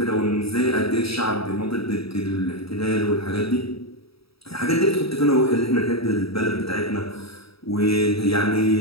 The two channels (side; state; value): right; late; 0.77 ms